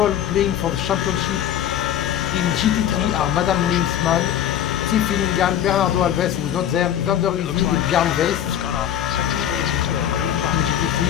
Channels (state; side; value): quieter; right; 10.6 dB